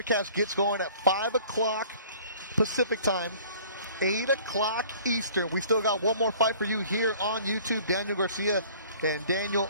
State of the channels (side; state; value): both; inverted; correlation -0.51